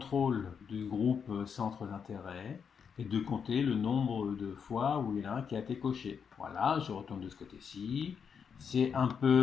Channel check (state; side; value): quieter; right; 6.8 dB